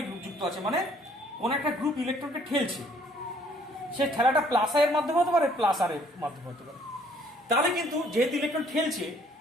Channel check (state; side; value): normal; both; correlation 0.61